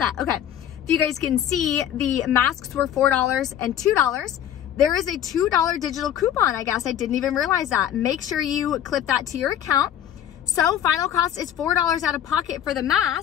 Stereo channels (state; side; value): quieter; right; 10.5 dB